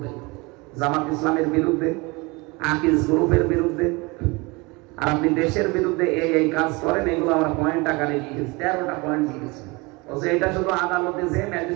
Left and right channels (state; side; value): quieter; left; 25.7 dB